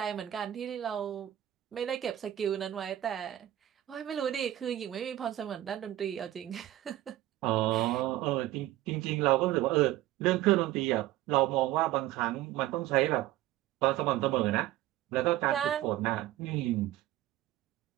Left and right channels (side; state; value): left; quieter; 14.2 dB